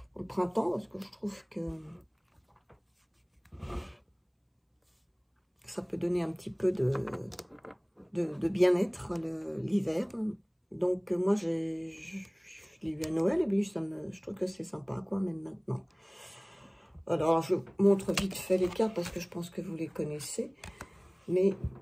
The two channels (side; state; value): both; identical; correlation 1.00